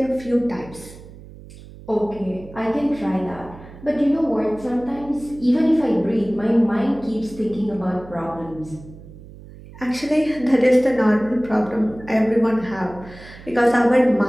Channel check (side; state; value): right; noise; hum, 18 dB below the sound